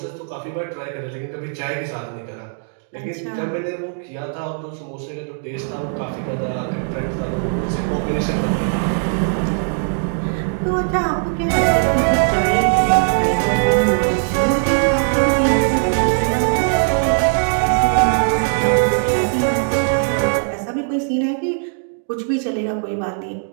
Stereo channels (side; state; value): left; silent; digital silence